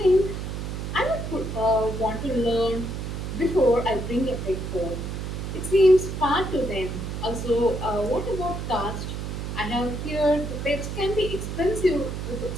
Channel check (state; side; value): noise; right; hum, 5 dB below the sound